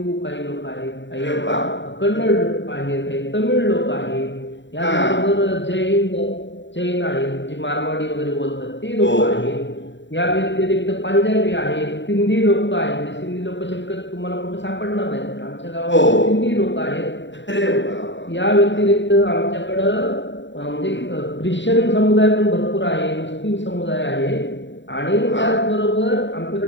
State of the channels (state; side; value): late; right; 0.53 ms